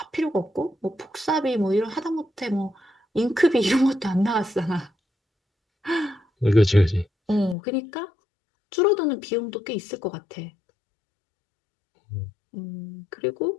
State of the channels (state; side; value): drops out; right; at 7.6 s